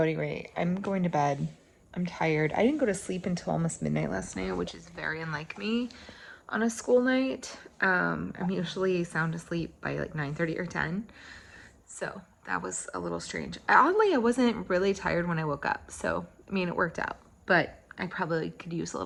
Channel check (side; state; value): both; identical; correlation 1.00